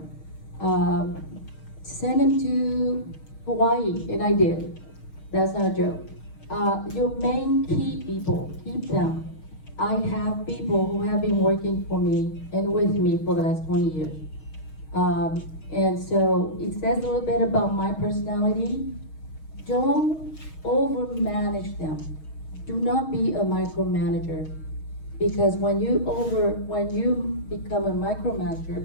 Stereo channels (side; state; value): right; late; 6.4 ms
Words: Send them to Hawaii, and I did. That's not a joke. Your main key people, keep them. I have people who have been working for me and with me for the last 20 years. And so it says a little bit about my personality. Don't overmanage them. Do not be a micromanager, because when you become a